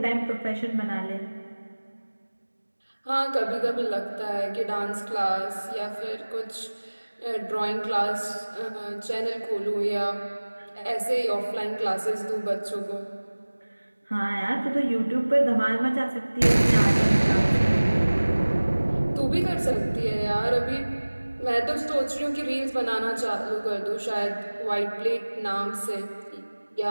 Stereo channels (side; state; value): both; inverted; correlation -1.00